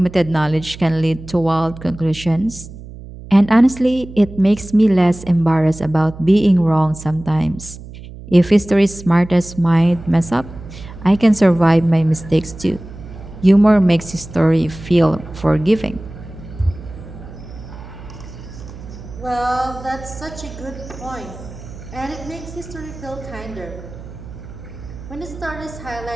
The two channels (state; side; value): noise; right; hum, 15 dB below the sound